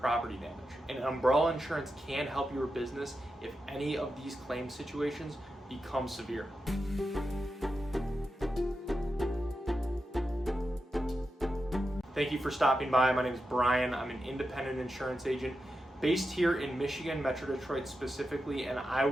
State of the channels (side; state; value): both; normal; correlation 0.89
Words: damage. And umbrella insurance can help your business if any of these claim situations become severe. Thank you for stopping by. My name is Brian. I'm an independent insurance agent based here in Michigan, Metro Detroit specifically, and I